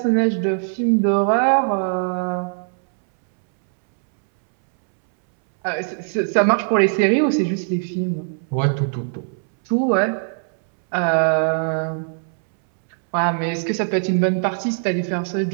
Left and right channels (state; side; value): silent; left; 65 dB below the other